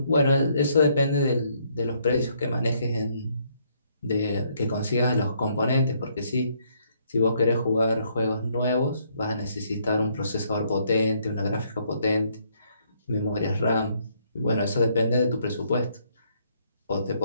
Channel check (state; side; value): inverted; both; correlation -0.69